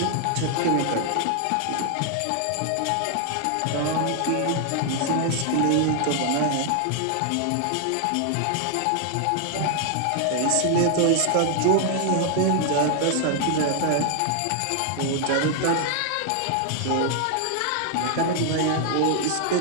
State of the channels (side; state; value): both; different; correlation 0.00